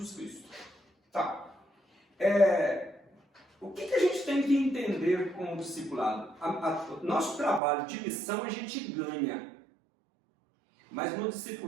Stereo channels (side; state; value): left; drops out; at 7.6 s